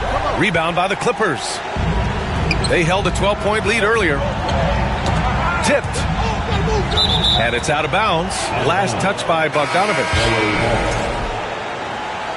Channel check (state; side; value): identical; both; correlation 1.00